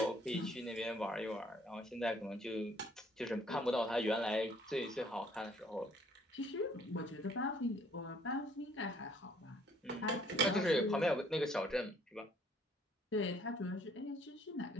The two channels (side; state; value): both; normal; correlation 0.61